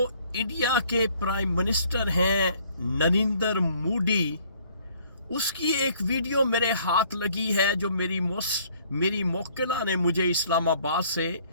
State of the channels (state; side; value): inverted; both; correlation -0.60